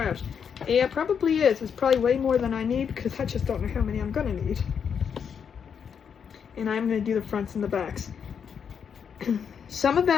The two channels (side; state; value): right; quieter; 7.2 dB